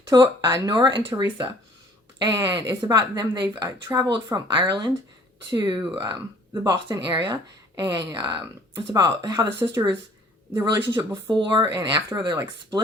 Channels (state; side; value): normal; both; correlation 0.55